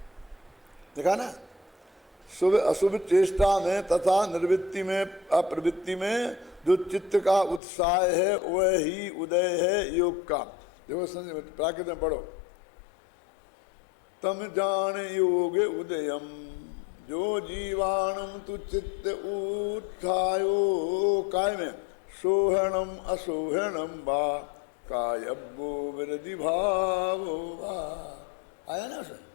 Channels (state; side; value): drops out; right; at 7.6 s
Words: देखा ना? शुभ अशुभ चेष्टा में तथा निर्वृत्ति में अप्रवृत्ति में जो चित्त का उत्साह है वह ही उदय है योग का। देखो प्राकृत में पढ़ो, तम जान योग उदयम जो जीवाणम तु चित्त उत्थायो काय में सोहणम असोहणम बा कायब्बो विरधि भावो बा। आया ना